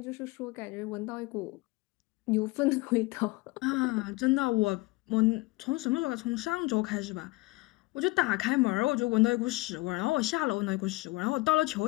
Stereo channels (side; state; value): right; quieter; 22.5 dB